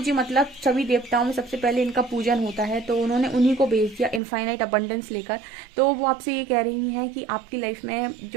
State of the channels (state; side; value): drops out; left; at 4.2 s